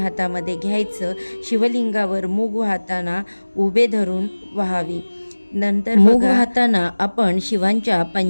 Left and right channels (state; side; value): inverted; both; correlation -1.00